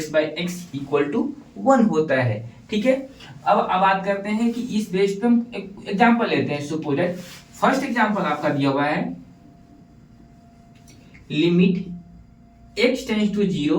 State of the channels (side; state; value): both; identical; correlation 1.00